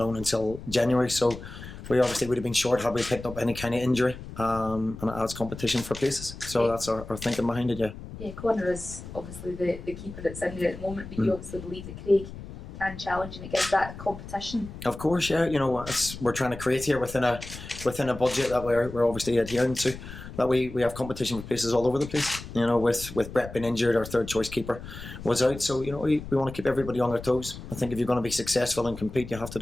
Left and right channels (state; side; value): noise; left; rumble, 12 dB below the sound